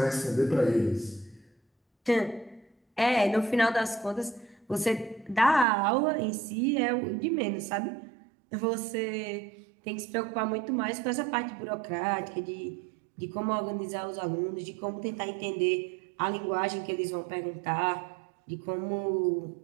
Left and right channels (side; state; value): left; drops out; at 5.7 s